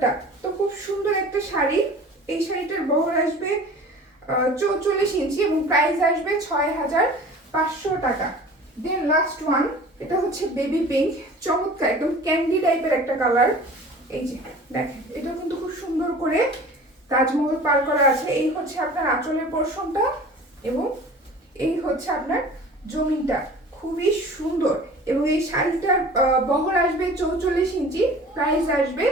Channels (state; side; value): normal; both; correlation 0.43